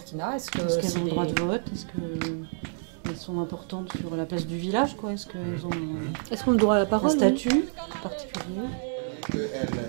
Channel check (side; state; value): left; silent; digital silence